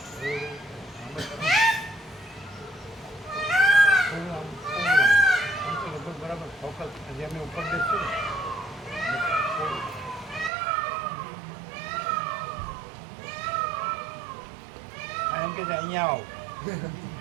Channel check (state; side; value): drops out; left; at 10.5 s